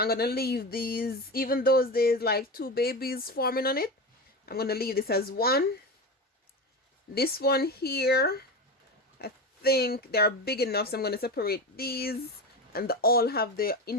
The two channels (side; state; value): both; normal; correlation 0.23